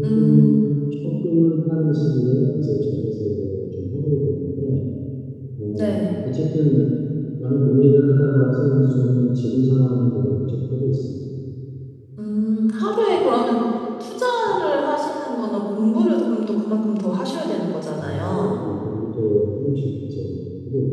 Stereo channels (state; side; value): identical; both; correlation 1.00